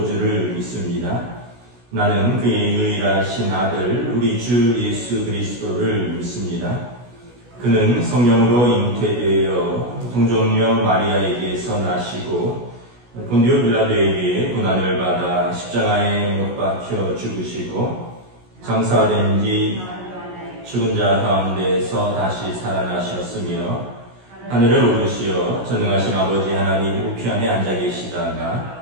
믿습니다. 나는 그의 유일하신 아들 우리 주 예수 그리스도를 믿습니다. 그는 성령으로 잉태되어 동정녀 마리아에게서 나시고 본디오 빌라도에게 고난을 받아 십자가에 못 박혀 죽으시고 장사된 뒤 죽은 자 가운데서 다시 살아나셨으며 하늘을 오르시어 전능하신 아버지 하나님 우편에 앉아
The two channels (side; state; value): left; late; 16 ms